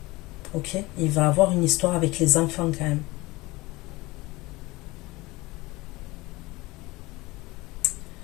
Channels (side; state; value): right; quieter; 21.3 dB